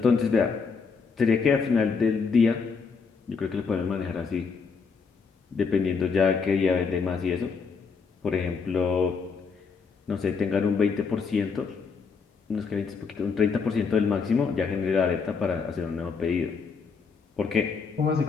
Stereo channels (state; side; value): quieter; right; 5.3 dB